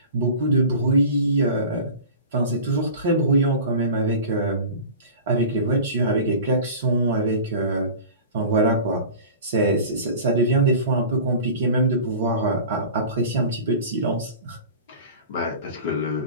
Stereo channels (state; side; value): inverted; both; correlation -0.37